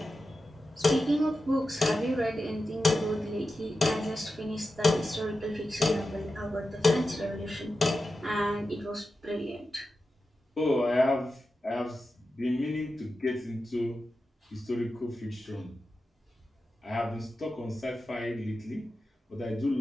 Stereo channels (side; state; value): both; normal; correlation 0.91